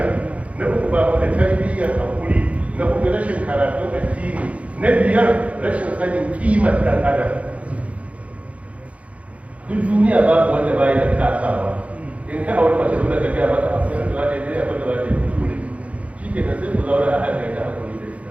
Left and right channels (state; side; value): late; left; 0.065 ms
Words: na uku ba da tarbiyyar hakuri, na uku rashin karatun addini, na biyar rashin sanin kimar ɗan adam. Duk duniya babu wanda bayi da kasawa. In ka aure mace dole ka gaya mata abu da za ta yi abin da za ta yi kuskure, shi ke da sai ku zaura a hankali ta hakuri da